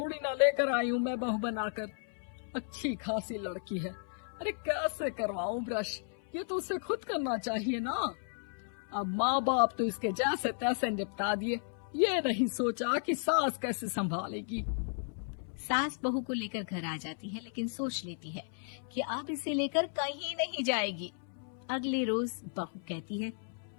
ना लेकर आई हूँ मैं बहू बनाकर। अच्छी खासी लड़की है, अरे कैसे करवाऊं ब्रश? ये तो उसे खुद करना चाहिए ना। अब माँ बाप तो इसके जैसे तैसे निपटा दिए, ये नहीं सोचा कि सास कैसे संभालेगी। सास बहू को लेकर घर आ जाती है, लेकिन सोच लेती है कि अब इसे लेकर कहीं नहीं जाएगी। अगले रोज बहू कहती है,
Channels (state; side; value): silent; right; 55 dB below the other